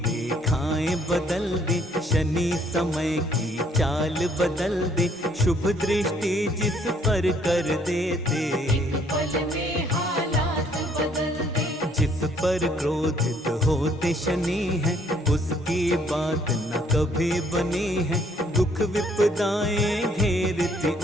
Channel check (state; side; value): normal; both; correlation 0.64